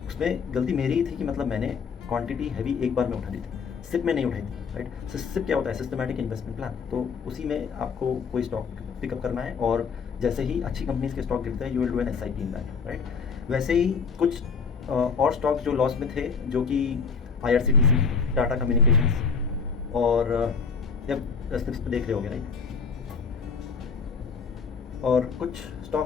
उसमें गलती मेरी ही थी कि मतलब मैंने क्वांटिटी हैवी एक बार में उठा दी थी, सिप में नहीं उठाई थी, राइट? सिप क्या होता है? Systematic investment plan. तो उसी में आपको कोई स्टॉक पिकअप करना है, और जैसे ही अच्छी कंपनीज के स्टॉक गिरते हैं you will do an SIP in that, right? वैसे ही कुछ और स्टॉक्स जो लॉस में थे, जो कि IRCTC, टाटा कम्युनिकेशंस, और जब स्निप्स पे देख रहे होगे, राइट? और कुछ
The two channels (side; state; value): right; quieter; 5.6 dB